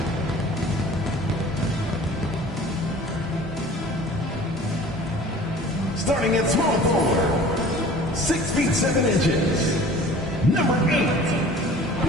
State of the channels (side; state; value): both; normal; correlation 0.46